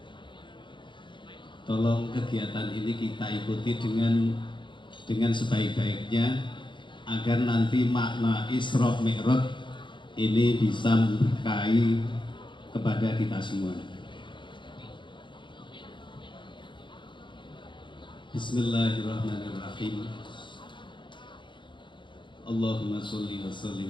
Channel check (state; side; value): late; right; 0.23 ms